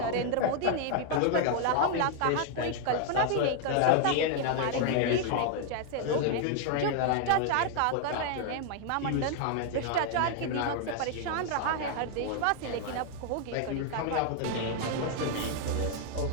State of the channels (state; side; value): different; both; correlation 0.00